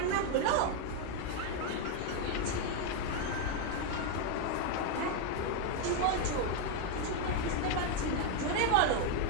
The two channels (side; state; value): both; different; correlation 0.01